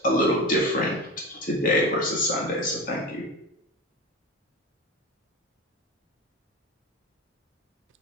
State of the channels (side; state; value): both; normal; correlation 0.26